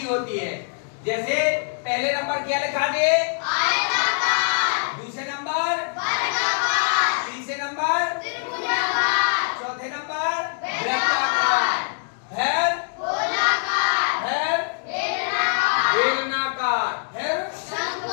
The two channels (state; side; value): silent; right; digital silence